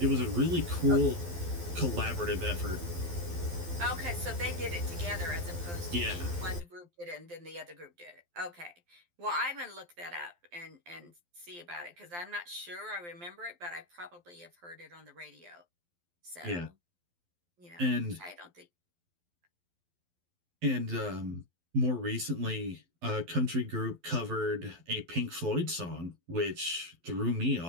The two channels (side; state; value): left; late; 12 ms